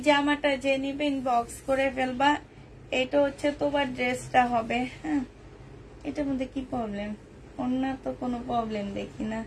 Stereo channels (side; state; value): both; identical; correlation 1.00